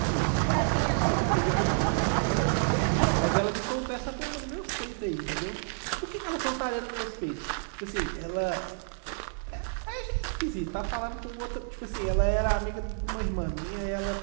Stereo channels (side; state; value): left; silent; digital silence